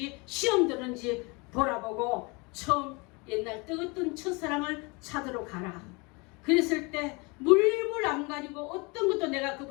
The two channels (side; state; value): right; quieter; 28.3 dB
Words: 시험 들었는지 돌아보고 처음 옛날 뜨겁던 첫사랑을 찾으러 가라. 그랬을 때 물불 안 가지고 어떤 것도 내가